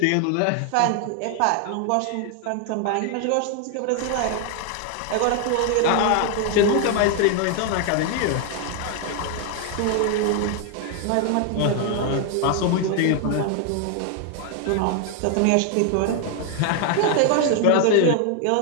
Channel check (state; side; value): different; both; correlation 0.00